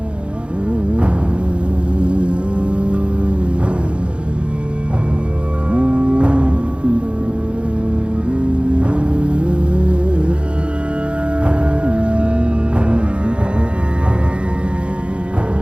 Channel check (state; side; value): late; left; 0.057 ms